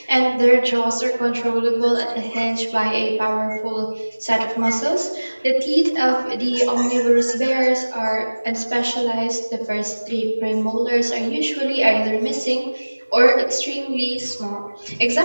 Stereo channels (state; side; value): inverted; both; correlation -1.00